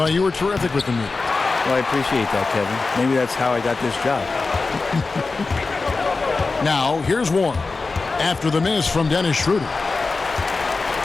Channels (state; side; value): quieter; right; 3.9 dB